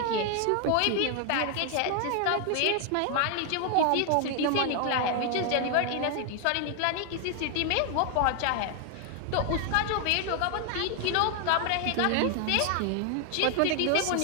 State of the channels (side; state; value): both; different; correlation 0.00